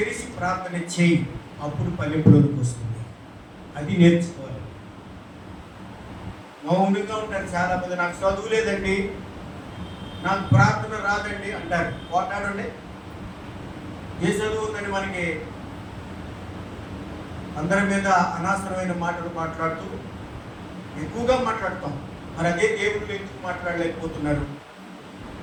ప్రార్థన చేయి. అప్పుడు పల్లెపులోకి వస్తుంది. అది నేర్చుకోవాలి. మౌనంగా ఉంటారు చాలా మంది. నాకు చదువు లేదండి, నాకు ప్రార్థన రాదండి అంటారు. పోటాడండి. ఏ చదువు ఉందని మనకి అందరి మీద అనవసరమైన మాటలు మాట్లాడుతూ ఎక్కువగా మాట్లాడతాం. మరి అదే దేవుళ్ళు ఎందుకు మాట్లాడలేకపోతున్నారు?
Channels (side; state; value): both; identical; correlation 1.00